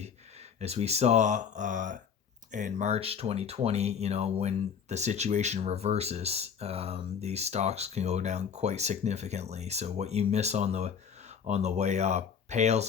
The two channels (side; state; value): right; quieter; 7.1 dB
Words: saw in March 2020, you know, when the situation reverses, these stocks can go down quite significantly. So what you miss on the way up pales